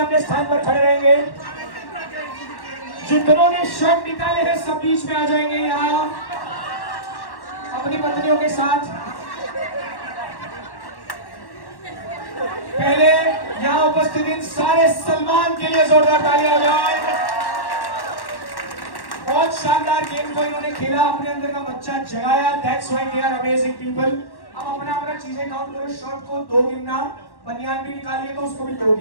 स्थान पर खड़े रहेंगे। जितनों ने शर्ट निकाले हैं सब बीच में आ जाएंगे यहाँ अपनी पत्नियों के साथ। पहले यहाँ उपस्थित उपस्थित इन सारे सलमान के लिए जोरदार तालियां बजाएं। बहुत शानदार गेम को इन्होंने खेला, अपने अंदर का बच्चा जगाया। That's why they are amazing people. अब अपना अपना चीजें काउंट करो। शर्ट को 2 गिनना, बनियान भी निकालिए तो उसको भी 2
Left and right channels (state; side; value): late; right; 1.1 ms